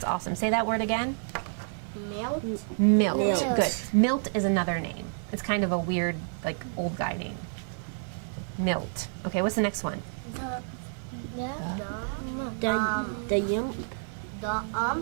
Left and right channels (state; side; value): silent; left; 55 dB below the other